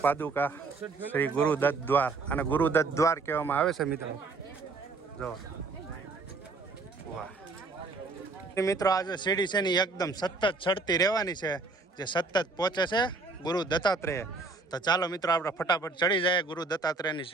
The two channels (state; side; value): quieter; left; 3.9 dB